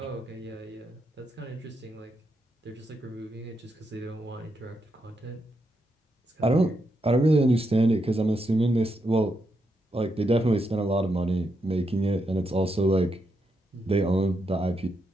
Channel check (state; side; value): normal; both; correlation 0.82